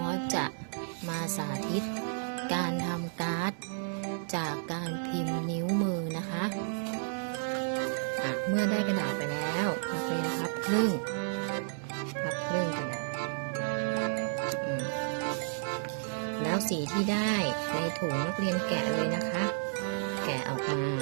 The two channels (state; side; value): silent; left; 56 dB below the other